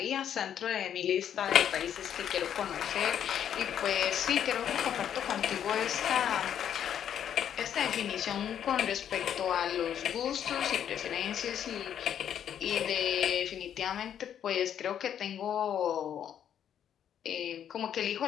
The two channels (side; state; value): right; quieter; 9.4 dB